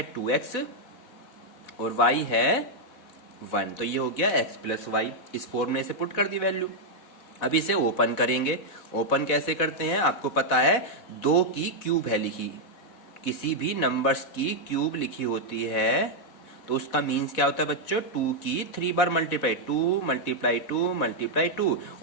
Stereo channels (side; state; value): right; late; 4.1 ms